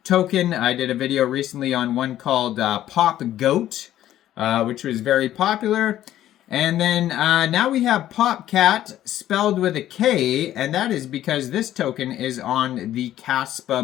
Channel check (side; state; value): right; quieter; 12.7 dB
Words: token. I did a video recently on one called Popgoat, which was very popular. And then now we have Popcat spelled with a K, and that is because this token is on the